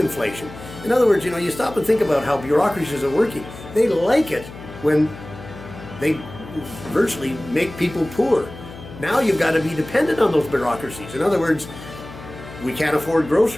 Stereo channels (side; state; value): left; noise; hum, 15 dB below the sound